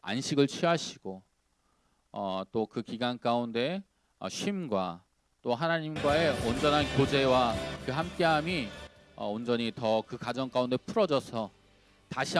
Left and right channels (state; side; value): identical; both; correlation 1.00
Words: 안식을 취하시고 또 그 기간 가운데 쉼과 또 하나님과의 온전한 교제와 그 함께함이 온전히 더 그 가정 가운데 풀어져서 다시